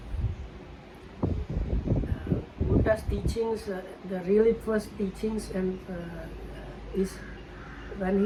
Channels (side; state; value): both; identical; correlation 1.00